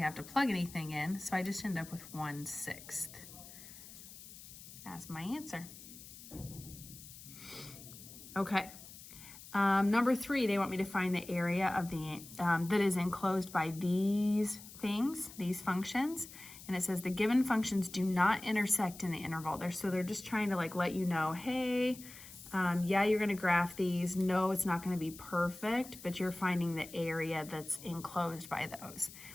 have to plug anything in, so I just end up with 1/6 as my answer. Okay. Number 3, they want me to find the area of the that is enclosed by these things, these functions. And it says the given functions do not intersect in the interval. So they're just trying to like let you know, hey, yeah, you're going to graph these. No, it's not going to be perfect, but you're finding the area that's enclosed by those.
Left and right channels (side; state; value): left; noise; hiss, 16 dB below the sound